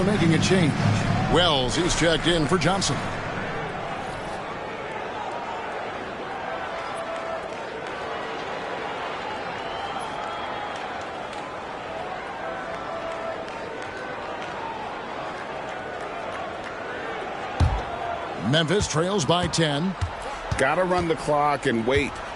making a change. Wells, he's checked in for Johnson. Memphis trails by 10. Got to run the clock and wait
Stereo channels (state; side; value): identical; both; correlation 1.00